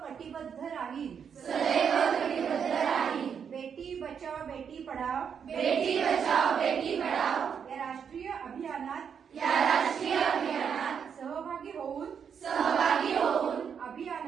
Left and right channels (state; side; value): quieter; left; 7.3 dB